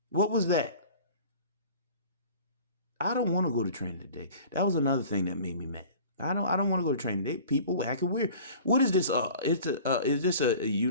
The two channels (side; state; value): both; inverted; correlation -0.44